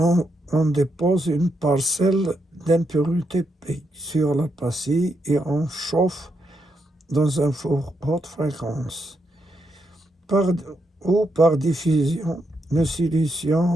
dépose une parcelle d'impurité P sur la pastille et on chauffe dans un four haute fréquence. Par diffusion, le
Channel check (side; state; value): both; normal; correlation 0.80